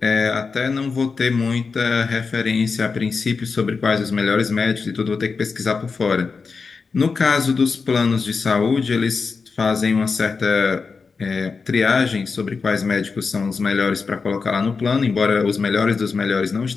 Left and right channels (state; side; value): quieter; right; 4.8 dB